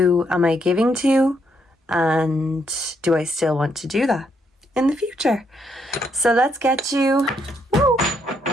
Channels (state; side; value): normal; both; correlation 0.75